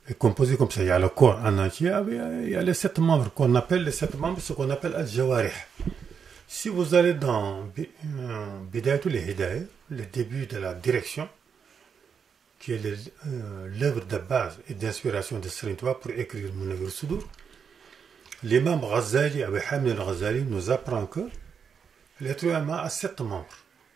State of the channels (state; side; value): quieter; left; 6.7 dB